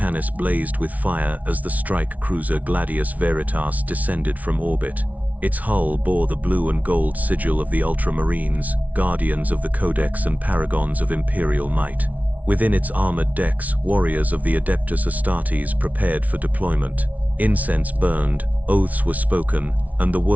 blazed with fire as the strike cruiser Gladius Veritas descended from orbit. Its hull bore the blue and gold sigil of the Ultramarines, guardians of the Codex and paragons of Imperial might. Within its armored decks, warriors of the Adeptus Astartes prepared for deployment. Incense burned, oaths were spoken, and the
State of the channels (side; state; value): left; late; 0.071 ms